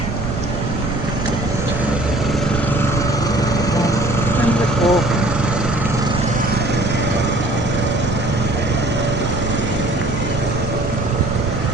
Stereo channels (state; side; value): noise; right; rumble, 4 dB below the sound